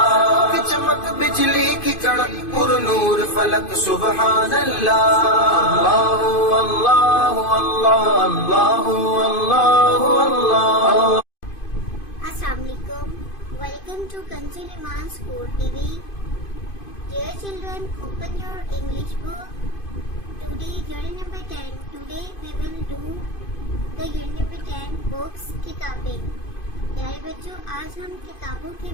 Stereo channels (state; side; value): late; right; 2.5 ms